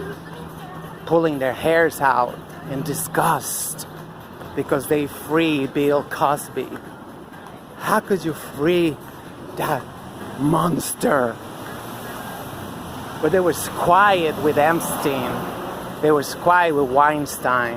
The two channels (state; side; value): identical; both; correlation 1.00